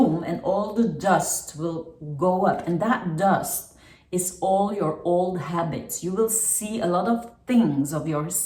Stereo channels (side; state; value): both; identical; correlation 1.00